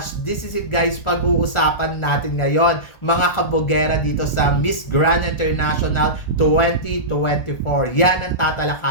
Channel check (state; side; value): late; right; 1.4 ms